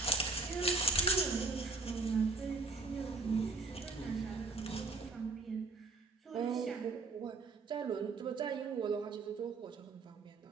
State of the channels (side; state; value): left; quieter; 3.8 dB